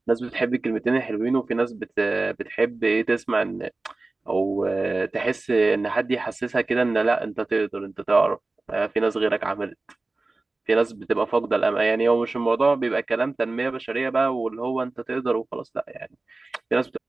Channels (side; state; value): left; quieter; 3.3 dB